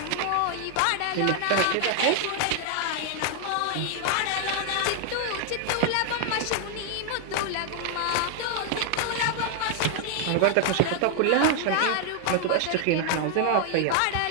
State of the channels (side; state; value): both; different; correlation 0.00